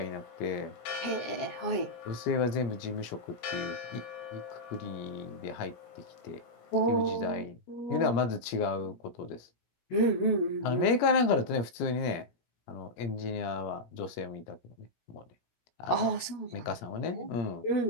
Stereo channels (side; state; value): right; late; 17 ms